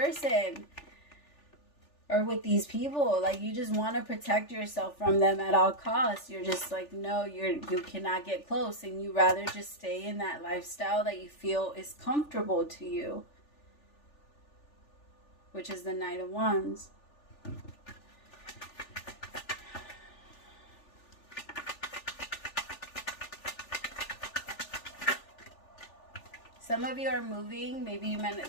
Or with these people, like, you just want to protect yourself from them at all costs. You're just like, no, you cannot get close, and you rather just stay in that lifestyle that you feel is comfortable to you, which is the Knight of Wands. Some of you are moving. Maybe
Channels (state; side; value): late; right; 3.4 ms